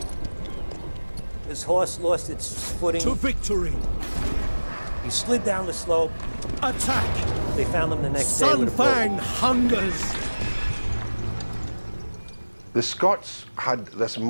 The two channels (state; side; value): inverted; both; correlation -1.00